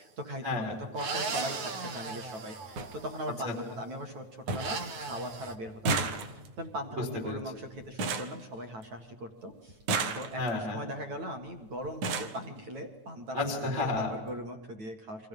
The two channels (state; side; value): late; left; 9.4 ms